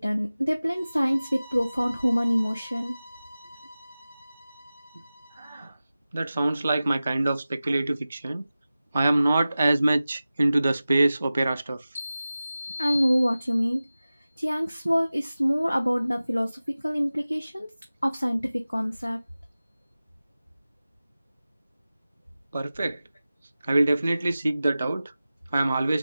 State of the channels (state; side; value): inverted; both; correlation -0.96